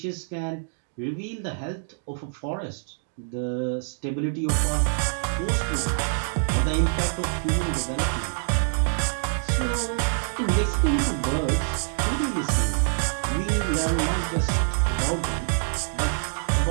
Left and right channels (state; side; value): silent; left; digital silence